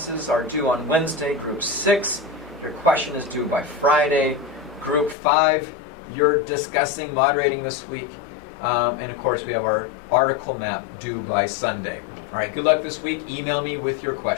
are due on Wednesday. Group 6, your question is due by Friday. Group 5, you're discussing moderating this week. And of course, we have our article map due by Sunday. All right, good luck this week. Email me with your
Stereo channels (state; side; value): drops out; right; at 5.2 s